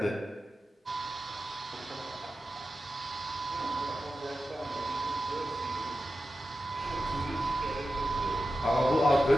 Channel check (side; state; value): both; normal; correlation 0.92